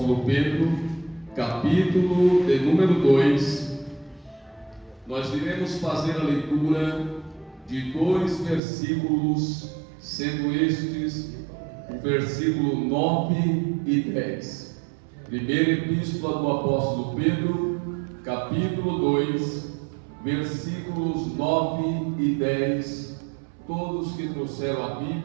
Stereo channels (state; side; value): drops out; left; at 8.6 s